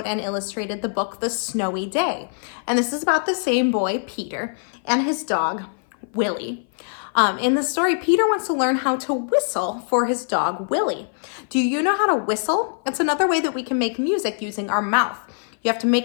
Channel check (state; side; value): silent; right; 57 dB below the other